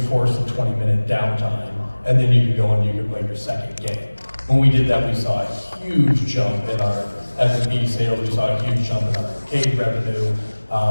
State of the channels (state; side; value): inverted; both; correlation -1.00